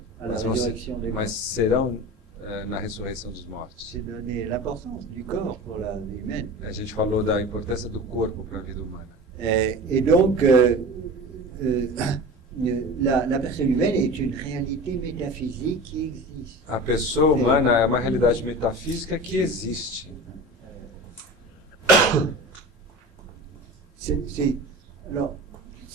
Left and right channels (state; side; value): normal; both; correlation 0.33